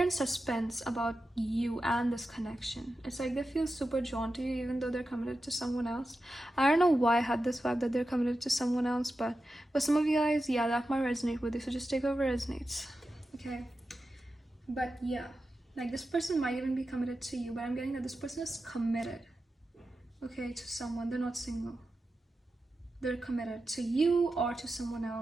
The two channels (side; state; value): both; normal; correlation 0.91